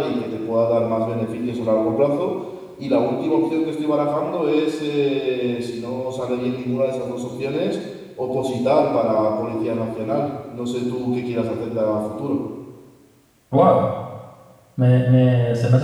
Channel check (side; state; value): both; identical; correlation 1.00